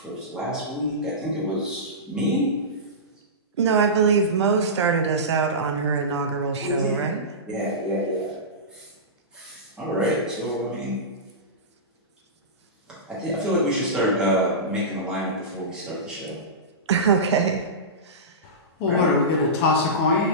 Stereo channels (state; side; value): normal; both; correlation -0.19